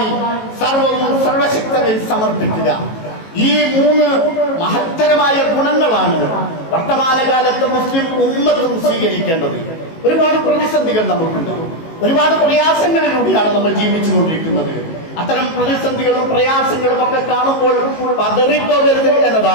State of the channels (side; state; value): right; late; 18 ms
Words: സർവവും സർവശക്തനിൽ സമർപ്പിക്കുക. ഈ 3 മഹത്തരമായ ഗുണങ്ങളാണ് വർത്തമാനകാലത്ത് മുസ്ലിം ഉമ്മത്തും സ്വീകരിക്കേണ്ടത്. ഒരുപാട് പ്രതിസന്ധികൾ നമുക്കുണ്ട്, ഒരുപാട് പ്രയാസങ്ങളിലൂടെയാണ് നമ്മൾ ജീവിച്ചുകൊണ്ടിരിക്കുന്നത്. അത്തരം പ്രതിസന്ധികളും പ്രയാസങ്ങളും ഒക്കെ കാണുമ്പോൾ പതറിപ്പോകരുത്